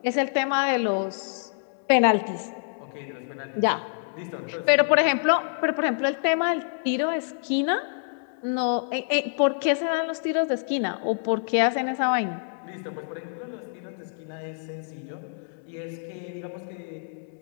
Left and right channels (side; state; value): right; silent; digital silence